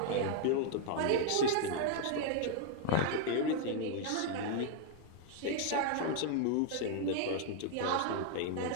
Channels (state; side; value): different; both; correlation 0.00